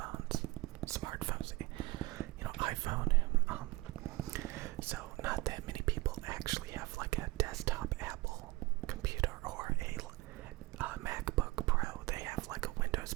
smartphones, iPhone. So not that many people actually have like a desktop Apple computer or a MacBook Pro. They have like a Windows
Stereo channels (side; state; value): left; quieter; 20.9 dB